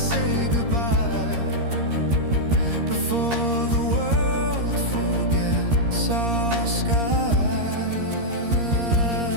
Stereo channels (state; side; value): late; left; 13 ms